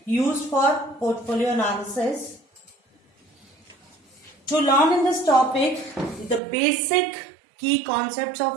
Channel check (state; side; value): drops out; left; at 6.4 s